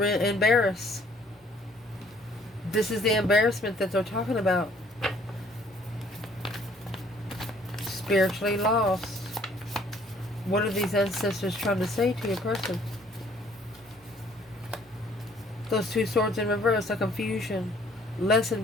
embarrassed. This is the embarrassment that they're talking about. Spiritually lost. What are these ancestors trying to say to your person? Those 2 swords in reverse, a confusion. Lessened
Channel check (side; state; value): both; normal; correlation 0.59